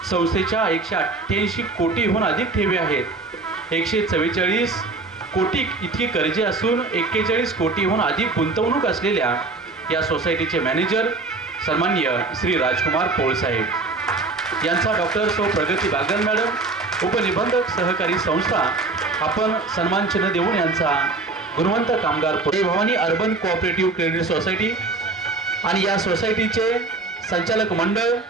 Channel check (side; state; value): left; quieter; 3.6 dB